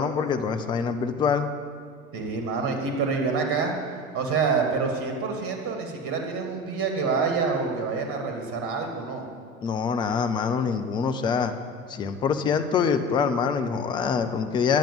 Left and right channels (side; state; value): both; normal; correlation 0.33